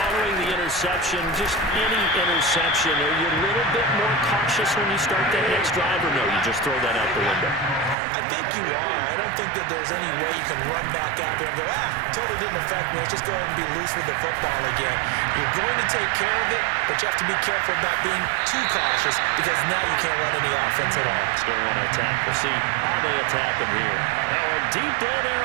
the interception, just any interception, are you a little bit more cautious when you start that next drive, or no, you just throw that out the window? I think you are. I don't think that there's any way you can run back out there and go, totally didn't affect me. Let's just go ahead and be loose with the football again. You're going to take care of it, but you have to be careful about being too cautious because now you can't run any offense at all. Still want to attack. We'll see how they attack him here. Now a deep ball there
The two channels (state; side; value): drops out; left; at 8.0 s